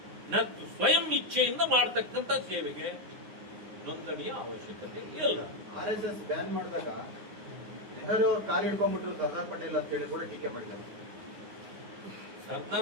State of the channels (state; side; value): late; left; 9.8 ms